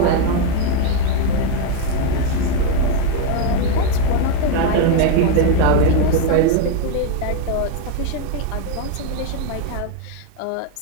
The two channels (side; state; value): both; different; correlation 0.01